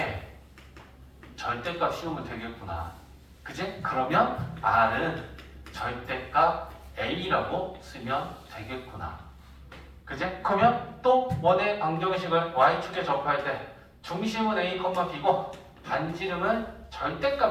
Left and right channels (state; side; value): identical; both; correlation 1.00